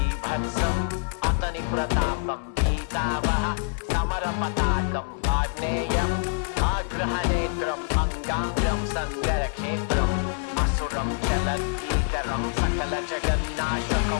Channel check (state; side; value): silent; right; digital silence